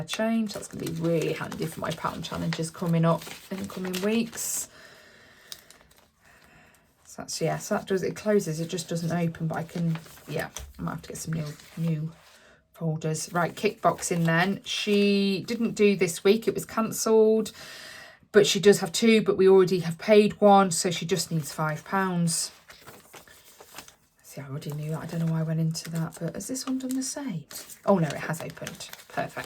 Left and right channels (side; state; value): both; identical; correlation 1.00